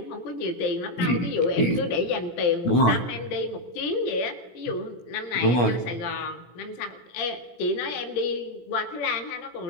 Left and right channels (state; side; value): late; right; 17 ms